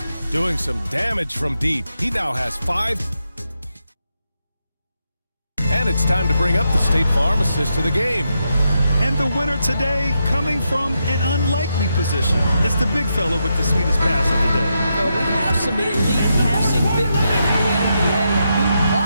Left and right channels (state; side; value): inverted; both; correlation -0.84